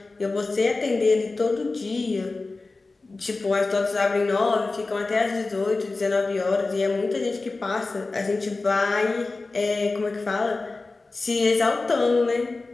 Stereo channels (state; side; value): quieter; right; 3.5 dB